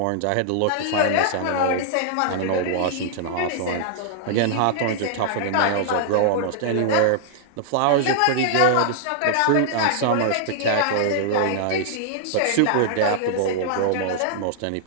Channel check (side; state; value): both; different; correlation -0.01